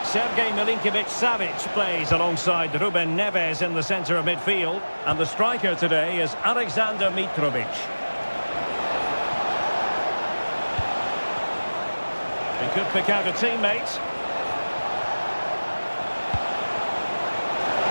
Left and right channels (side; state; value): both; inverted; correlation -1.00